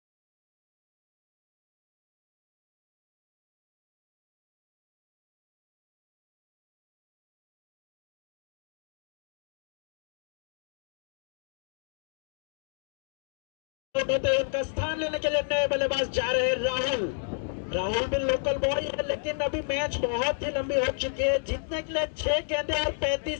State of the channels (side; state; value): right; silent; digital silence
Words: का स्थान लेने के लिए नए बल्लेबाज जा रहे हैं राहुल। राहुल भी लोकल बॉय है, लेकिन अभी मैच बहुत ही लंबी हो चुकी है। जीतने के लिए 6 गेंदें और